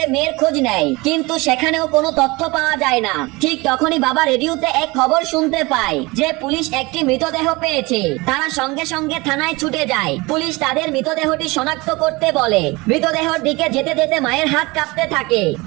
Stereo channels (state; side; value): quieter; left; 23.8 dB